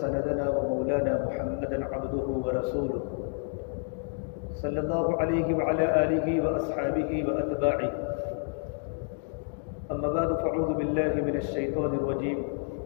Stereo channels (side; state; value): right; silent; 58 dB below the other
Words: ومولانا محمدا عبده ورسوله صلى الله عليه وعلى آله وأصحابه وأتباعه. أما بعد فأعوذ بالله من الشيطان الرجيم.